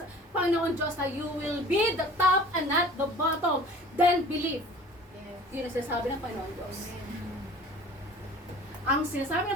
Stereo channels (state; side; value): normal; both; correlation 0.45